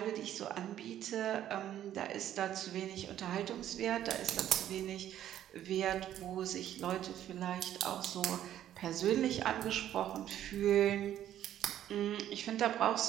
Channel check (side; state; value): left; quieter; 11.5 dB